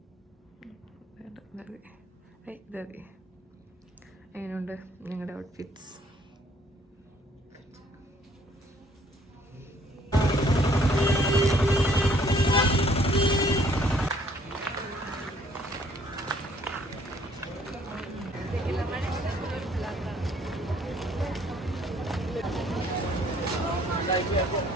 എങ്ങനെയുണ്ട് ഞങ്ങളുടെ ഔട്ട്ഫിറ്റ്സ്?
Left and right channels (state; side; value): normal; both; correlation 0.62